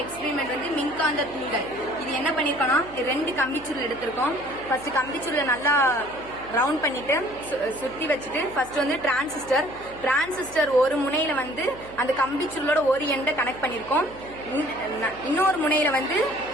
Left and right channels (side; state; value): right; noise; hum, 20 dB below the sound